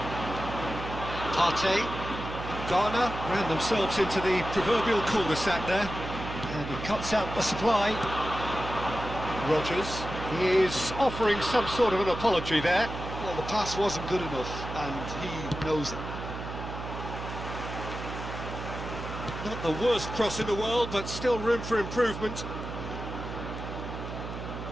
Partey. Ghana ran themselves into the proverbial cul-de-sac there. And he cuts out the supply. Rodgers is offering some sort of an apology there. Well, the pass wasn't good enough, and he knows it. Not the worst cross in the world, but still room for improvement.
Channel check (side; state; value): right; noise; hum, 8 dB below the sound